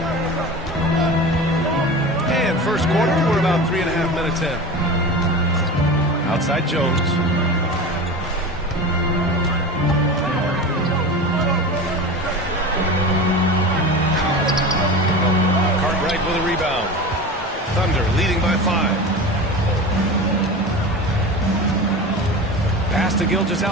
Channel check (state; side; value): normal; both; correlation 0.30